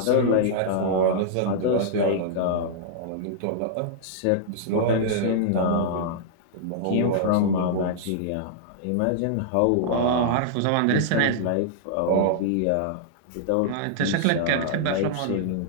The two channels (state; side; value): different; both; correlation -0.01